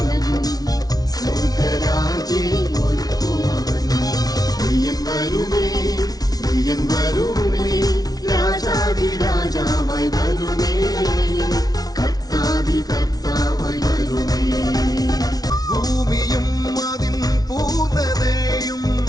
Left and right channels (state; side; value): late; right; 0.19 ms